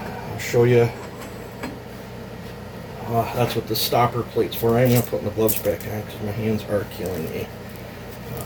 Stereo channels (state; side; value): identical; both; correlation 1.00